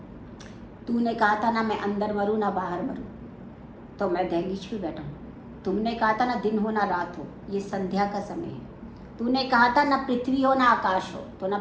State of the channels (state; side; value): identical; both; correlation 1.00